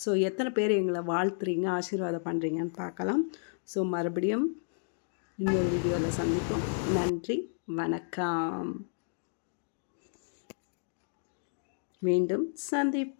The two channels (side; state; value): right; silent; digital silence